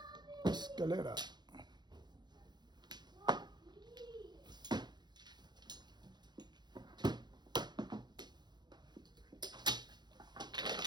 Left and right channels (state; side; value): late; left; 0.21 ms